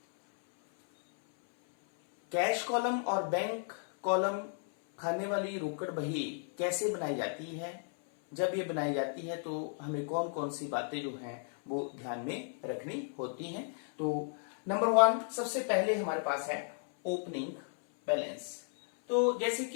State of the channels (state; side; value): silent; right; 55 dB below the other